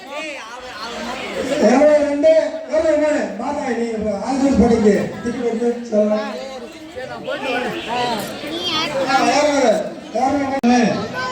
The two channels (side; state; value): both; identical; correlation 1.00